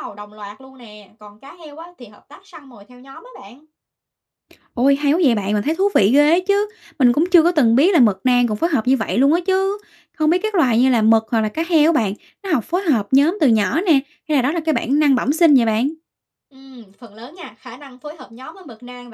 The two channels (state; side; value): identical; both; correlation 1.00